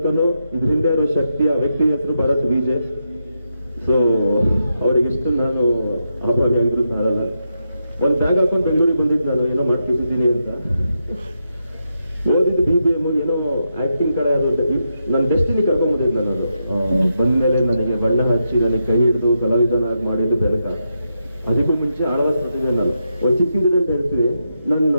ಇದ್ರ ಹಿಂದೆ ಇರೋ ಶಕ್ತಿ, ಆ ವ್ಯಕ್ತಿ ಹೆಸರು ಭರತ್ ವಿಜಯ್. ಸೊ ಅವರಿಗೆಷ್ಟು ನಾನು ಆಭಾರಿ ಆಗಿದ್ರು ಸಾರಲ್ಲ. ಒಂದು ಬ್ಯಾಗ್ ಹಾಕೊಂಡು ಬೆಂಗಳೂರಿಗೆ ಬಂದಿದ್ದು ನಾನು, ಏನೋ ಮಾಡ್ತಿದ್ದೀನಿ ಅಂತ. ಓದಿದ್ದು BBM, ಏನೋ ಆಕ್ಟಿಂಗ್ ಕಡೆ ಅದು ನನ್ನ ಡೆಸ್ಟಿನಿ ಕರ್ಕೊಂಡ್ಬಂದಿದ್ದು ನಾನು. ಬಂದ್ಮೇಲೆ ನನಗೆ ಬಣ್ಣ ಹಚ್ಚಿ ನನಗೆ ಕೈ ಹಿಡಿದು ಕಲಾವಿದನಾಗಿ ಮಾಡಿದ್ದು ಬೆನಕ. ಅದಕ್ಕೂ ಮುಂಚೆ ಆಳ್ವಾಸ್ ಪ್ರತಿಭೆ. ನಾನು ಒಂದು ಚಿಕ್ಕಿದ್ರೆ ಅಂತ ಹೇಳ್ತೀವಿ, ನನ್ನ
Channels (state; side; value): inverted; both; correlation -0.84